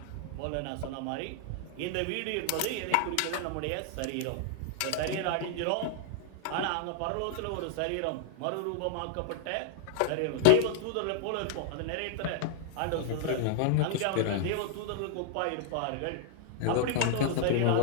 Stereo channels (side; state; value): both; different; correlation -0.01